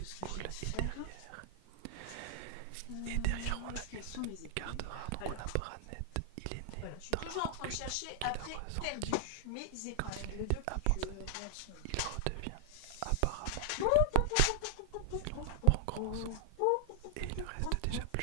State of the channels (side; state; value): both; different; correlation 0.00